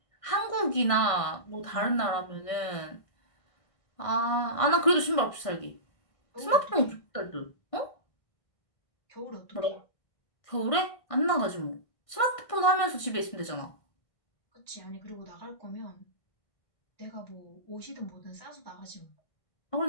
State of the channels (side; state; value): right; late; 1.5 ms